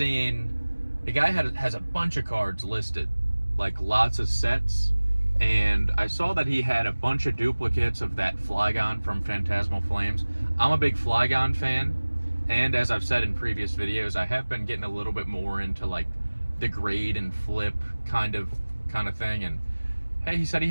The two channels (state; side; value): inverted; both; correlation -1.00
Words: a guy has a bunch of cards listed, like lots of sets, and I saw that he had a bunch of duplicates of that Flygon from Phantasmal Flames. I'm a big Flygon fan, and as I've said in previous videos, I have been getting a little bit more into like the grade and flip kind of thing. And hey, he said he